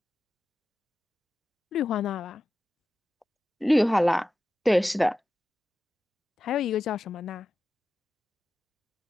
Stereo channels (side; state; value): both; normal; correlation 0.92